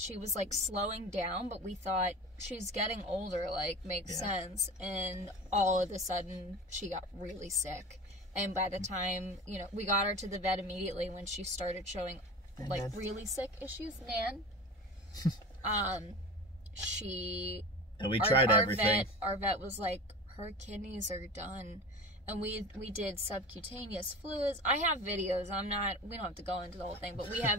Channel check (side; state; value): both; normal; correlation 0.33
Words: was slowing down, but we thought she's getting older, makes sense. And all of a sudden she got really sick. And by the time, we got her to the vet immediately when she started showing really sick issues. Nan. And we tried everything. Our vet was like, her kidneys are done. And we did subcutaneous fluids. I have videos. We don't have to go into the whole thing, but we